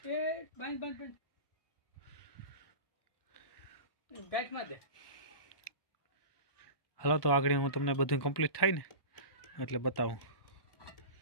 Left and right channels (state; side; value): late; right; 1.2 ms